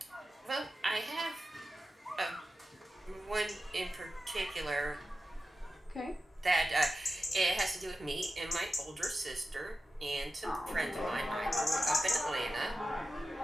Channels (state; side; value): normal; both; correlation 0.93